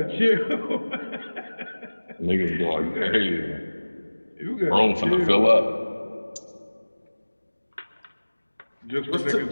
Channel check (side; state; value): both; inverted; correlation -1.00